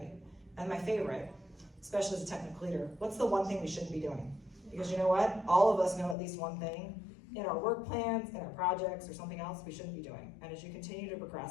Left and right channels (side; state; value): right; drops out; at 6.2 s